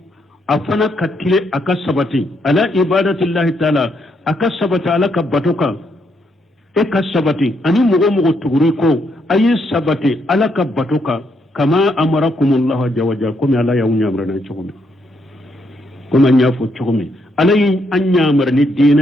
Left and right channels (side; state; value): both; normal; correlation 0.76